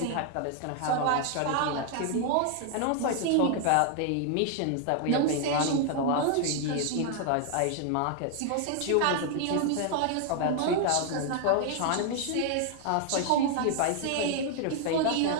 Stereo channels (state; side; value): different; both; correlation 0.00